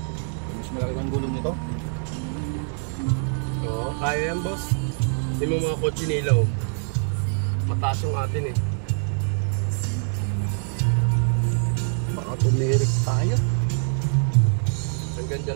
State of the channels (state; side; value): silent; left; 60 dB below the other